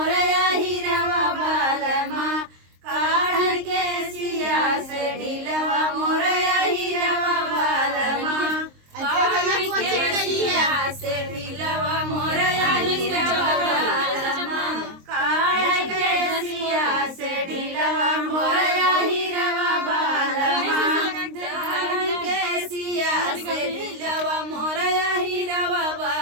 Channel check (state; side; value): late; left; 23 ms